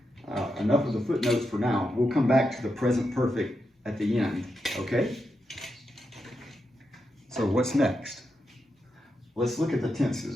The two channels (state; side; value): normal; both; correlation 0.86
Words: enough of the footnotes for now. We'll come back to the present perfect at the end, okay? So what's next? Let's look at the